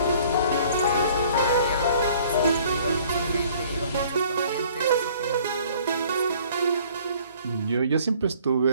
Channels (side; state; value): both; inverted; correlation -0.55